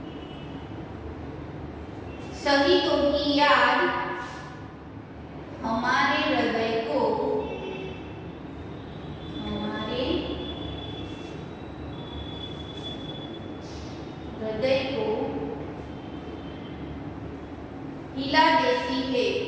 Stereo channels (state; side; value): identical; both; correlation 1.00